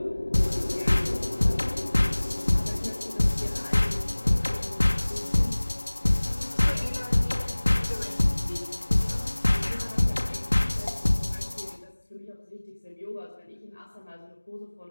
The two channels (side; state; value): both; inverted; correlation -1.00